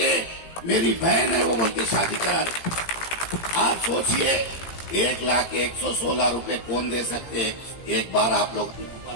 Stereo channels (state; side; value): late; right; 17 ms